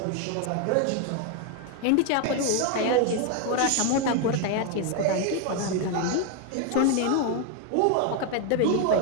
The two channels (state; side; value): different; both; correlation 0.01